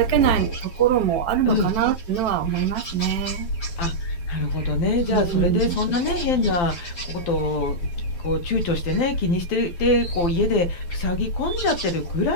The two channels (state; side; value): late; right; 12 ms